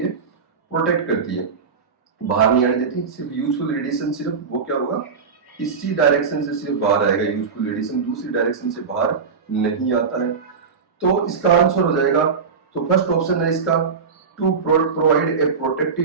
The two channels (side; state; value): left; quieter; 5.6 dB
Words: प्रोटेक्ट करती है, बाहर नहीं आने देती। सिर्फ यूजफुल रेडिएशन सिर्फ वो क्या होगा, इसी डायरेक्शन से सिर्फ बाहर आएगा यूजफुल रेडिएशन, दूसरी डायरेक्शन से बाहर नहीं आता है। तो इसका आंसर हो जाएगा, तो फर्स्ट ऑप्शन है इसका to provide a